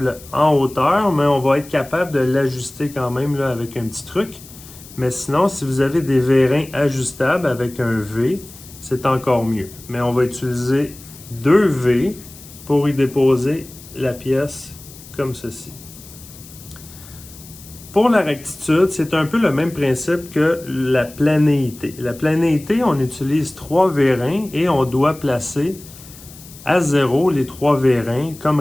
en hauteur, mais on va être capable de l'ajuster quand même là, avec un petit truc. Mais sinon, si vous avez des vérins ajustables avec un V, c'est encore mieux. Mais on va utiliser deux V pour y déposer la pièce comme ceci. Pour la rectitude, c'est un peu le même principe que la planéité. La planéité, on utilise 3 vérins et on doit placer à 0 les 3 vérins comme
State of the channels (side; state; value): left; noise; hiss, 19 dB below the sound